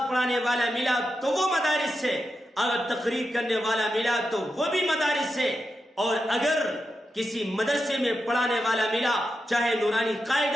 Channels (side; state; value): both; normal; correlation 0.88